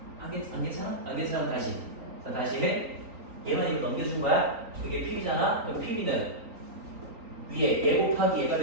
안 괜찮아? 안 괜찮으면 다시. 자, 다시 해. 얘만 이거 넘겨준 거야? 그게 PB잖아? 그럼 PB는 위에 얘 곱하기 얘가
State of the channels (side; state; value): left; late; 3.9 ms